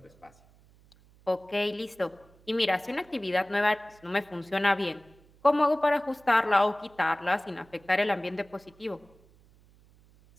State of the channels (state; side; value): noise; right; hum, 29 dB below the sound